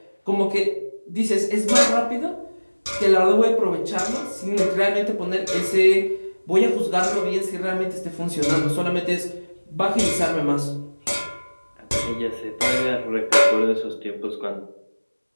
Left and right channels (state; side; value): inverted; both; correlation -1.00